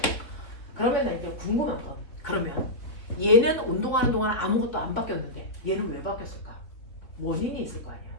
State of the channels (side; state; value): right; late; 3.5 ms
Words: 그러면 나 이제 궁금한 건, 그러면 얘는 운동하는 동안 아무것도 안 바뀌었는데 얘는 왜 바뀌었을까? 원인이 있을 거 아니야.